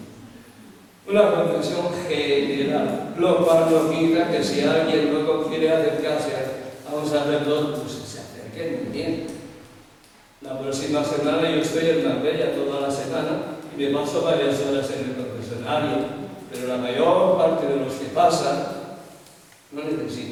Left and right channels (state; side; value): identical; both; correlation 1.00